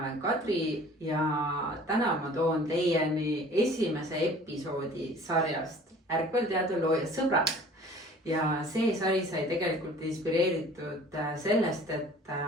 Kadri ja täna ma toon teieni esimese episoodi sarjast Ärkvelteade looja sõbrad. Ja see sari sai tegelikult inspireeritud sellest, et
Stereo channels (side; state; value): both; normal; correlation 0.48